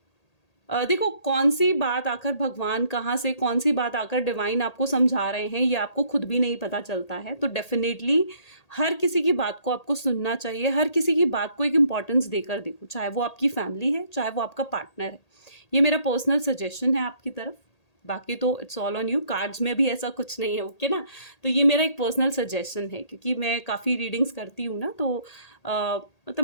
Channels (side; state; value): right; late; 1.8 ms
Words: देखो कौन सी बात आकर भगवान कहाँ से, कौन सी बात आकर डिवाइन आपको समझा रहे हैं, ये आपको खुद भी नहीं पता चलता है। तो डेफिनेटली हर किसी की बात को आपको सुनना चाहिए, हर किसी की बात को एक इम्पॉर्टेंस देकर देखो, चाहे वो आपकी फैमिली है, चाहे वो आपका पार्टनर है। ये मेरा पर्सनल सजेशन है आपकी तरफ, बाकी तो it's all on you. Cards में भी ऐसा कुछ नहीं है, ओके ना। तो ये मेरा एक पर्सनल सजेशन है, क्योंकि मैं काफ़ी रीडिंग्स करती हूँ ना, तो मतलब